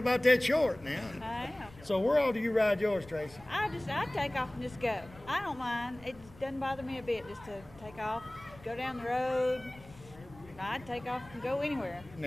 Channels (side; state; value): left; noise; rumble, 21 dB below the sound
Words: that short now. I am. So where all do you ride yours, Tracy? I take off and just go. I don't mind. It doesn't bother me a bit just to take off, go down the road. I'd take off and go anywhere.